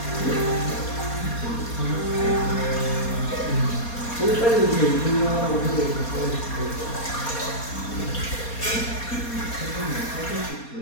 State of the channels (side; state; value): right; late; 4.2 ms